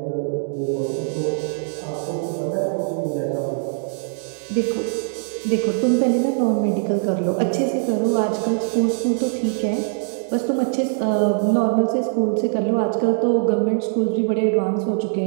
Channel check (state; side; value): silent; left; digital silence